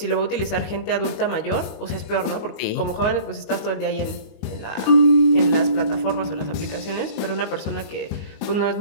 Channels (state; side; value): late; right; 19 ms